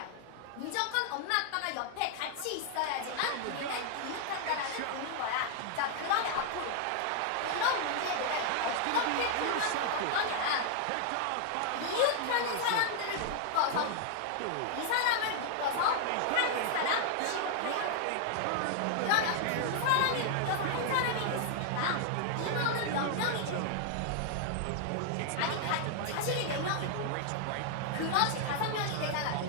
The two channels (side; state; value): both; different; correlation 0.00